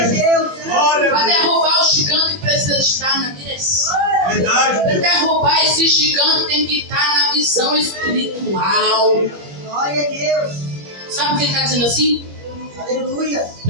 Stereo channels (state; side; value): late; left; 21 ms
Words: Jesus. Glória Para a Deus. derrubar o gigante precisa estar na direção. Verdade, Para Deus. derrubar esse gigante tem que estar na visão espiritual. Glória a Deus. Sabe o que ele está dizendo assim? Aleluia.